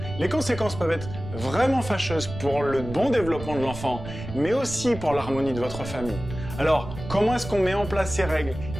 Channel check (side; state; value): right; noise; rumble, 10 dB below the sound